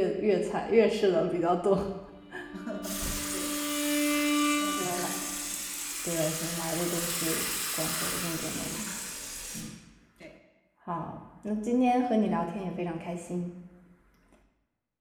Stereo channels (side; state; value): both; identical; correlation 1.00